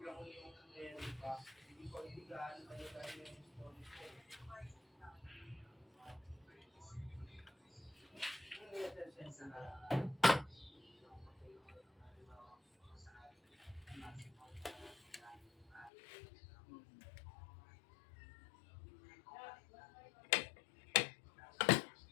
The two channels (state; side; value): drops out; right; at 15.9 s